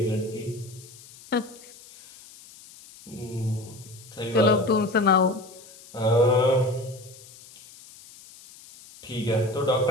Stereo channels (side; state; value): left; noise; hiss, 21 dB below the sound